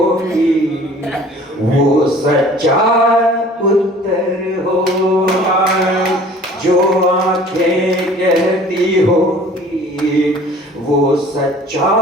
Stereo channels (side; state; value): both; normal; correlation 0.49